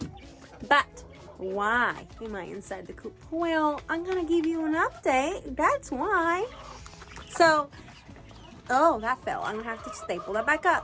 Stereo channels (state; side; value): identical; both; correlation 1.00